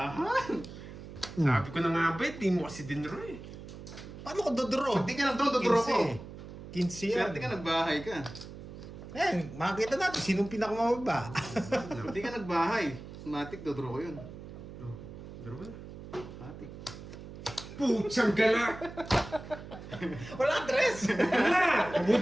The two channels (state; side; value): noise; right; hum, 13 dB below the sound